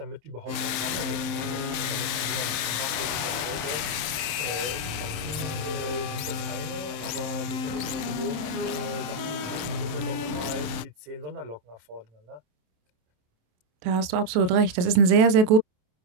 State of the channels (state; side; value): late; left; 27 ms